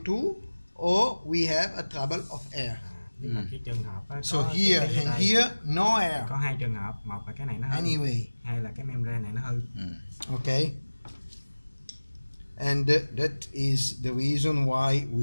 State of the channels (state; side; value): inverted; both; correlation -1.00